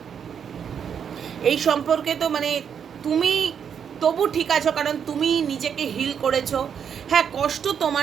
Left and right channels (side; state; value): left; quieter; 7.6 dB